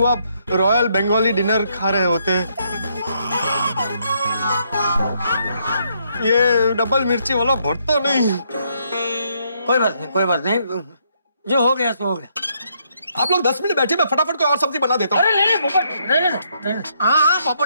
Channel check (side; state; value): both; inverted; correlation -0.73